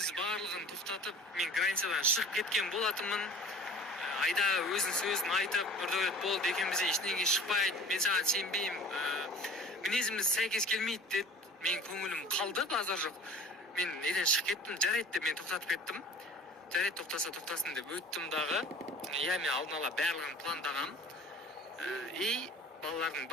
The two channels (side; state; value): both; normal; correlation 0.43